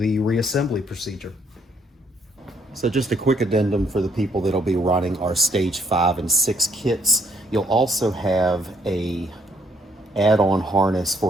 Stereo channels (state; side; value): normal; both; correlation 0.68